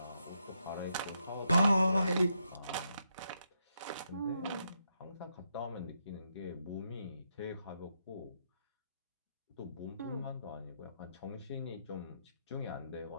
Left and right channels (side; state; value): both; inverted; correlation -0.80